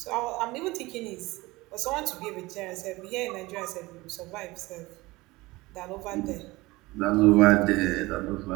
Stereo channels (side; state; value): left; quieter; 21.1 dB